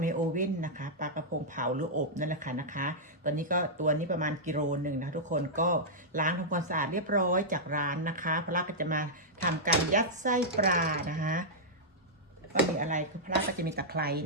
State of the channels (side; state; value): both; normal; correlation -0.09